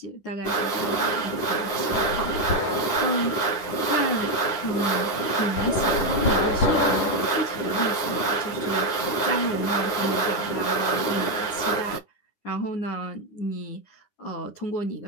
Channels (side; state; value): right; late; 10 ms